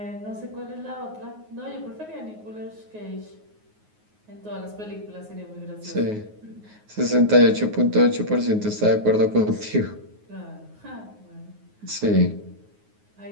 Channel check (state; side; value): late; left; 9.5 ms